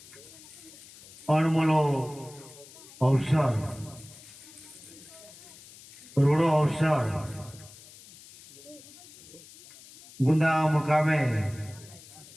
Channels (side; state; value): left; noise; hiss, 20 dB below the sound